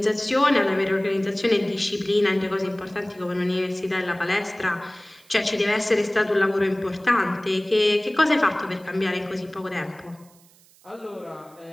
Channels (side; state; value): right; noise; hiss, 28 dB below the sound